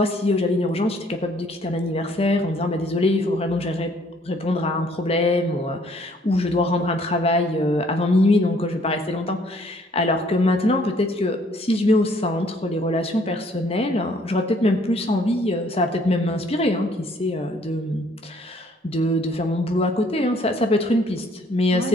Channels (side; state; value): both; normal; correlation 0.62